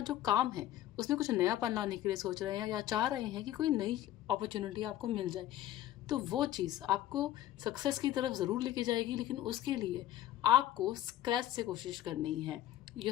जो काम है उसमें कुछ नयापन लाने के लिए सोच रहे हैं या चाह रहे हैं कि कोई नई अपॉर्चुनिटी आपको मिल जाए। तो वो चीज़ आपको सक्सेस की तरफ ज़रूर लेके जाएगी, लेकिन उसके लिए आपको स्क्रैच से कोशिश करनी है।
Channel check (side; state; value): right; quieter; 13.2 dB